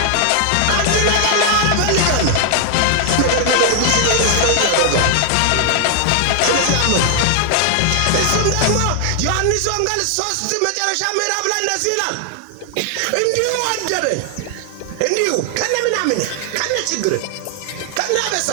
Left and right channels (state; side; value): different; both; correlation 0.00